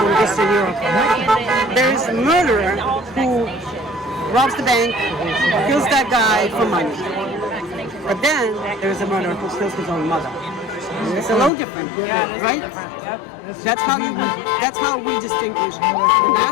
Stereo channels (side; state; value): right; drops out; at 11.5 s